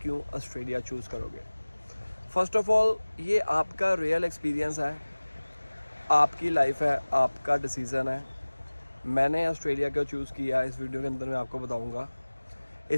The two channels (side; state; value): both; inverted; correlation -1.00